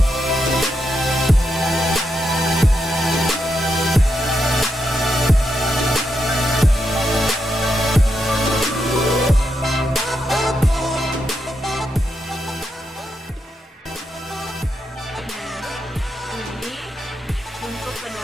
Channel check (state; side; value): normal; both; correlation 0.83